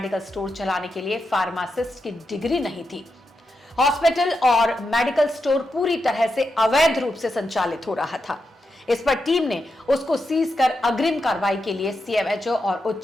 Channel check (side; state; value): both; normal; correlation 0.86